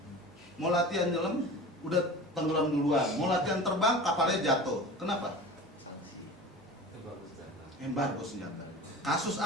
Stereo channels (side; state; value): both; normal; correlation 0.36